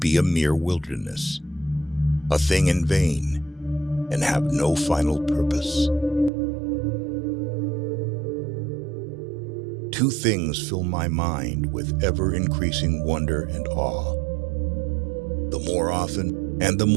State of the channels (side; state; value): left; drops out; at 6.3 s